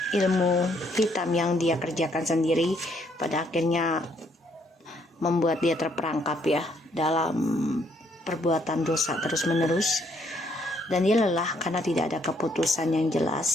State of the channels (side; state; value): both; normal; correlation 0.69